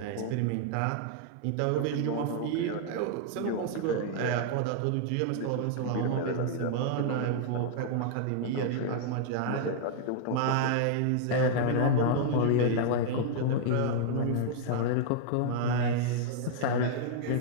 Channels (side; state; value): both; different; correlation -0.01